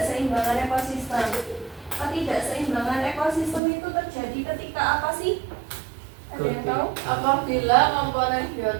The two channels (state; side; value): drops out; left; at 3.6 s